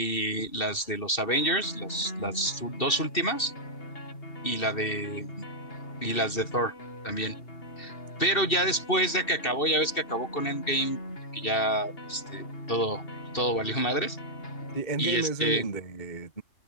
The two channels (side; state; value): right; late; 2.7 ms